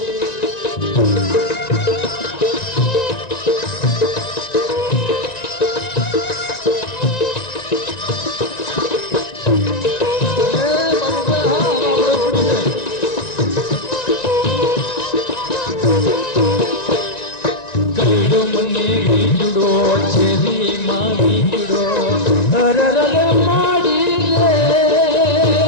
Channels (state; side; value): late; right; 1.9 ms